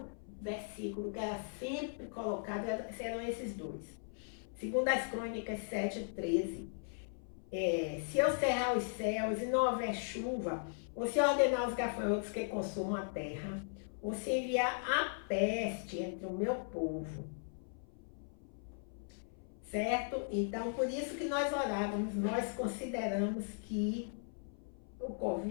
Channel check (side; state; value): right; silent; 53 dB below the other